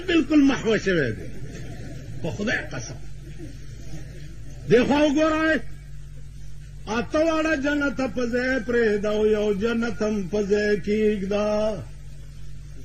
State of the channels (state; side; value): identical; both; correlation 1.00